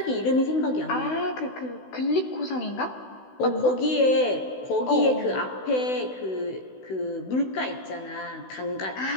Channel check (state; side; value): late; right; 16 ms